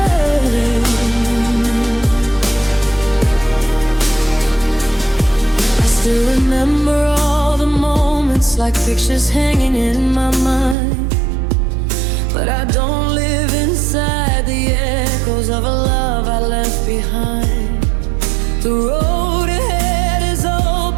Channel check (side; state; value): left; drops out; at 10.8 s